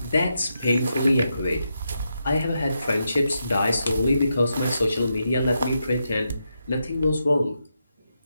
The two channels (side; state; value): both; inverted; correlation -0.84